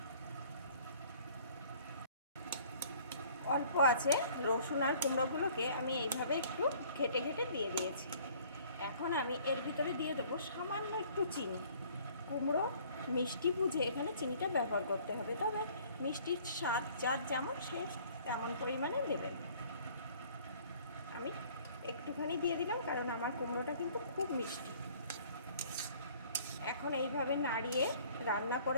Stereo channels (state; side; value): inverted; both; correlation -0.54